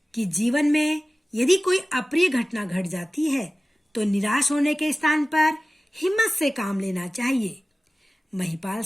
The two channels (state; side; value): normal; both; correlation 0.97